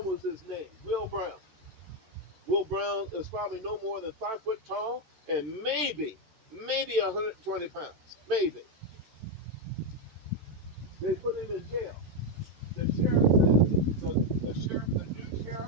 was his name, Will Brown. Will Brown is probably no more than 5 foot tall and maybe 120 pounds. Maybe. They put him in jail. The sheriff says, the new sheriff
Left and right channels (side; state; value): left; late; 14 ms